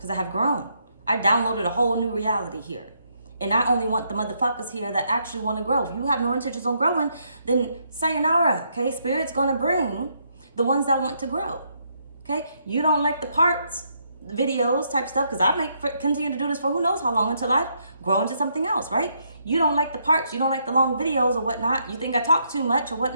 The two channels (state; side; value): inverted; both; correlation -0.75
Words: I have grown. I downloaded a whole new reality here. And I only want the motherfuckers here that actually want to grow. If you have no intentions on growing, then sayonara, okay? Spirit's going to bring the ones that want to grow, okay? You don't like the parts, videos type stuff, because I continue to do this for who knows how long until I grow into something else, right? You don't like the parts, you don't like the long videos or whatnot. You think I talk too much or